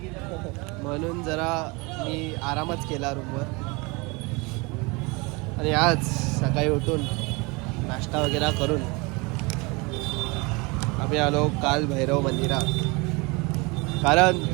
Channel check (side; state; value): left; quieter; 26.9 dB